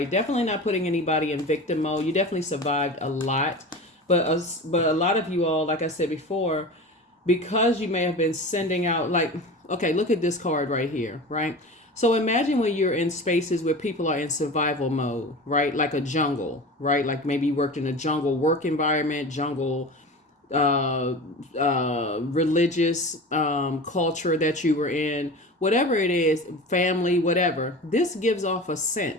Definitely not putting anybody in victim mode. You definitely survived a lot, but a lot of you all, like I said before, because you may have been sending out, like, okay, look at this card right here, right? So imagine when you're in spaces where people are in survival mode, right? Like a jungle, right? Like maybe you worked in a jungle work environment, jungle religious culture that you were in, whatever it is, family, whatever. This gives off a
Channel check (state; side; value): normal; both; correlation 0.32